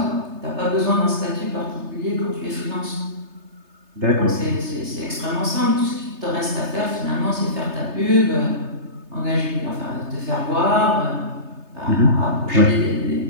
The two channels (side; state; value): left; late; 3.3 ms